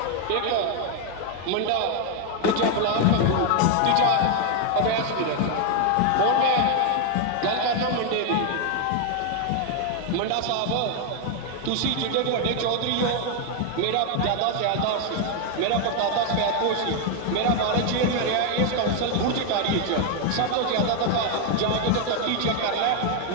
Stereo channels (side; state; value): both; different; correlation 0.01